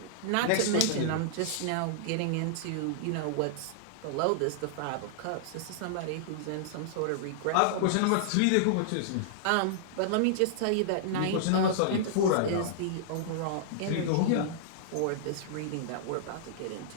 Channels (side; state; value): both; different; correlation -0.01